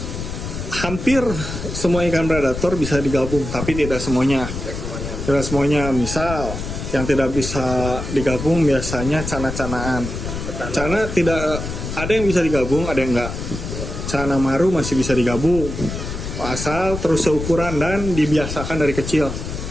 hampir semua ikan predator bisa digabung, tapi tidak semuanya. Tidak semuanya. Misal yang tidak bisa digabung biasanya cana-canaan. Cana tidak, ada yang bisa digabung, ada yang enggak. Cana maru masih bisa digabung asal terus seukuran dan dibiasakan dari kecil.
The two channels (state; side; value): noise; left; rumble, 6 dB below the sound